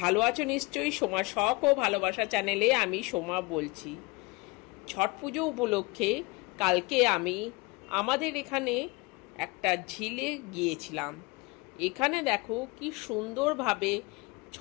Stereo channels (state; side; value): quieter; right; 25.3 dB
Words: আছো নিশ্চয়ই। সোমা শখ ও ভালোবাসা চ্যানেলে আমি সোমা বলছি। ছট পুজো উপলক্ষে কালকে আমি আমাদের এখানে একটা ঝিলে গিয়েছিলাম। এখানে দেখো কি সুন্দরভাবে